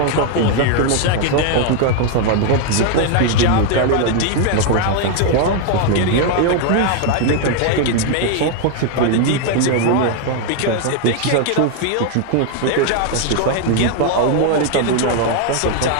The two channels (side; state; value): both; different; correlation 0.01